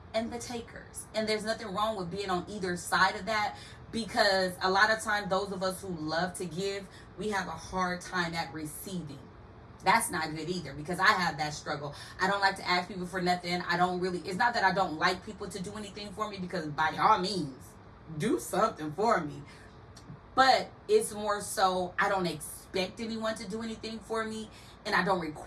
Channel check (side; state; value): both; identical; correlation 1.00